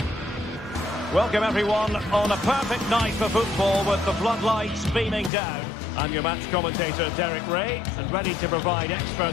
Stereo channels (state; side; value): drops out; right; at 5.3 s